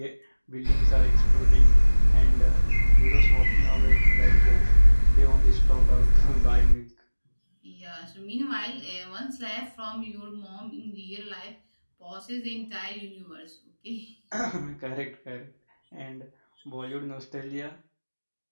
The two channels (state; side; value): inverted; both; correlation -1.00